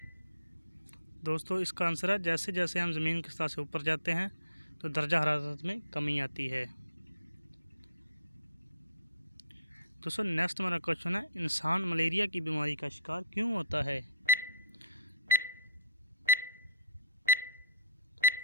दोस्तों इसका आंसर है, जैसे जैसे हम ज़मीन की सतह से ऊपर जाते हैं तो दर्जा हरारत में कमी आती है। दोस्तों नेक्स्ट हमारा क्वेश्चन है, इंसान मलेरिया की बीमारी का शिकार क्यों होता है।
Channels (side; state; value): both; inverted; correlation -0.55